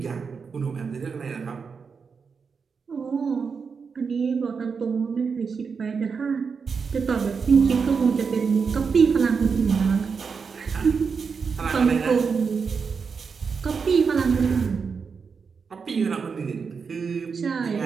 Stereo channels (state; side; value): quieter; left; 5.6 dB